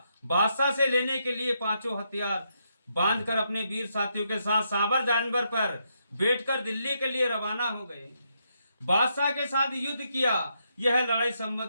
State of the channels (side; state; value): both; inverted; correlation -0.79